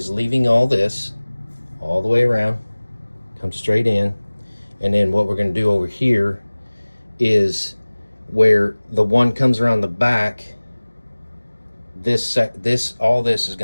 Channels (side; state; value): both; inverted; correlation -1.00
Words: leaving all this all the way around, come straight in, and then what we're going to do over here is where the one comes around the back, all this is